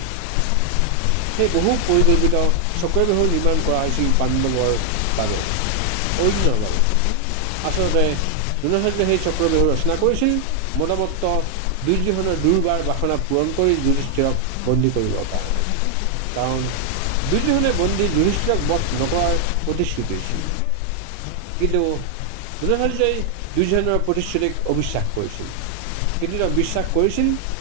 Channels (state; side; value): different; both; correlation 0.00